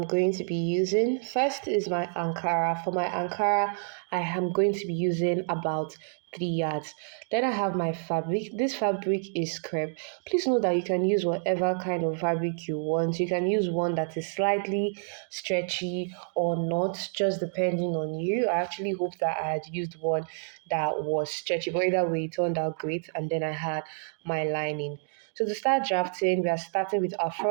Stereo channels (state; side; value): silent; left; digital silence